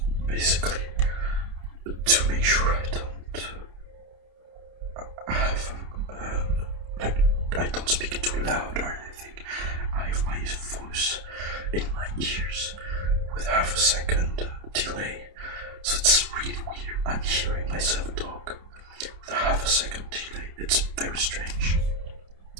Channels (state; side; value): late; left; 29 ms